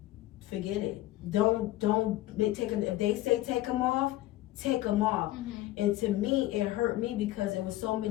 forget it. Don't take them. If they say take them off, take them off. Mm-hmm. And to me, it hurt me because there was so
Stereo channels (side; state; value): right; quieter; 16.0 dB